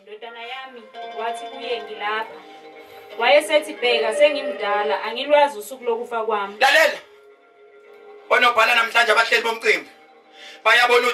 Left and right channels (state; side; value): identical; both; correlation 1.00